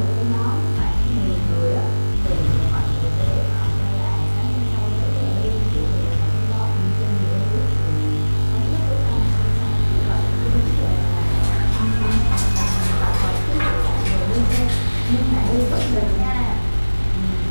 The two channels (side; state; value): both; inverted; correlation -1.00